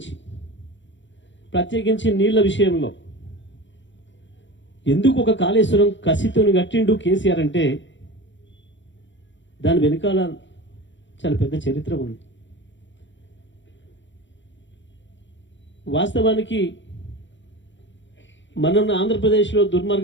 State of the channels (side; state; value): right; late; 0.54 ms